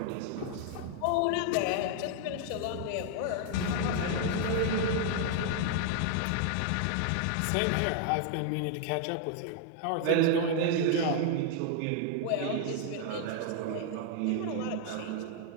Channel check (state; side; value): different; both; correlation 0.00